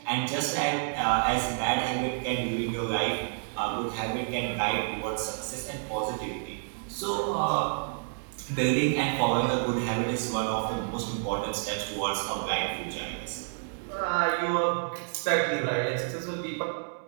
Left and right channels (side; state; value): left; silent; 58 dB below the other